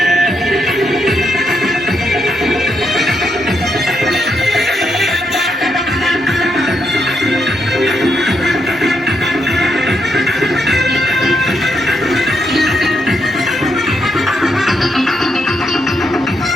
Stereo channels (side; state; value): both; normal; correlation 0.80